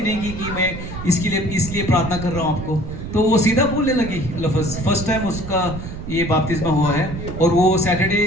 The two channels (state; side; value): noise; right; rumble, 9 dB below the sound